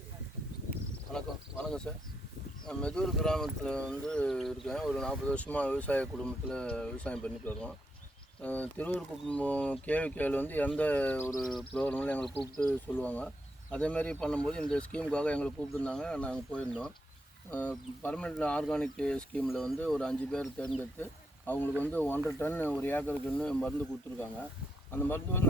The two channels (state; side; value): normal; both; correlation 0.80